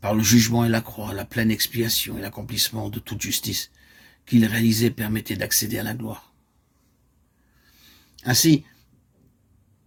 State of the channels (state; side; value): identical; both; correlation 1.00